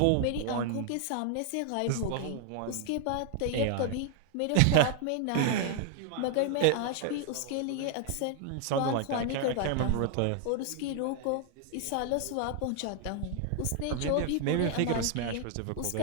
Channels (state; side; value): different; both; correlation 0.00